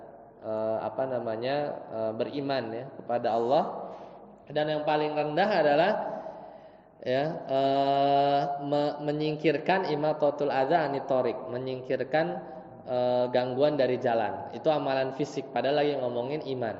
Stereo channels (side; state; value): both; identical; correlation 1.00